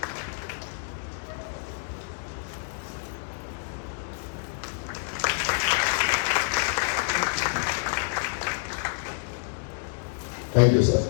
Thank you sir.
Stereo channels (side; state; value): right; silent; digital silence